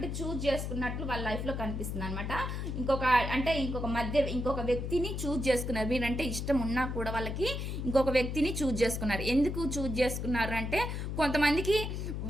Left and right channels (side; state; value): left; noise; hum, 3 dB below the sound